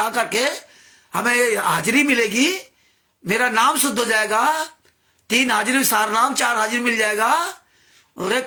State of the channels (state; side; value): identical; both; correlation 1.00